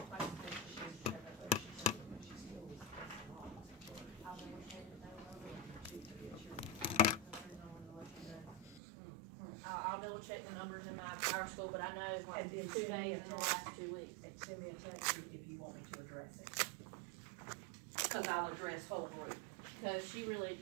like I said, she was there, but she said that she still was locked. I'll double check it though. I'll double check the numbers in my power school, but I know it's like And then 2 days in the last 2 weeks. And send me a text if you want me to address it. Because I'll address whole group. Because she really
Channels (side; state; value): left; drops out; at 8.8 s